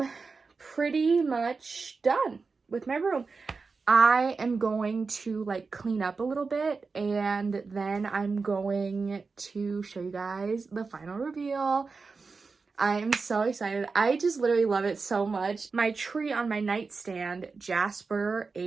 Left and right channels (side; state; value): left; quieter; 4.5 dB